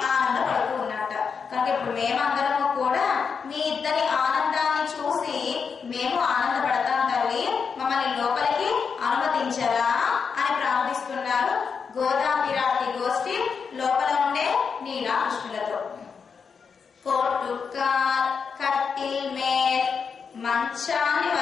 ఆనందపడుతూ ఉన్నట్ట. కనుక ఇప్పుడు మేమందరము కూడా మీ ఇద్దరి ఆనందాన్ని చూసి మేము ఆనందపడతాం తల్లి, మమ్మల్ని లోపలికి అనుమతించరా అని ప్రార్థిస్తున్నారు గోదా పిరాటి గోష్ఠి లోపల ఉండే నీలా కృష్ణులతో. కోటుకాల్ కట్టిల్ మేల్ మంచాన్ని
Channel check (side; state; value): right; quieter; 5.9 dB